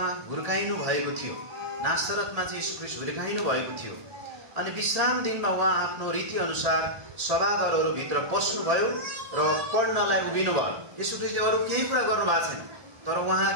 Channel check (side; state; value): left; late; 1.8 ms